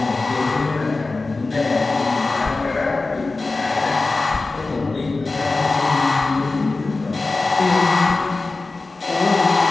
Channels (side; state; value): right; quieter; 3.5 dB